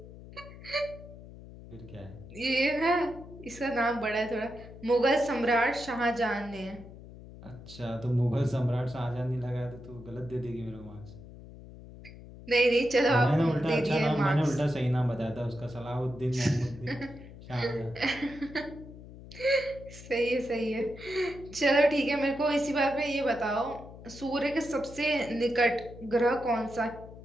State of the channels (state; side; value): noise; left; hum, 16 dB below the sound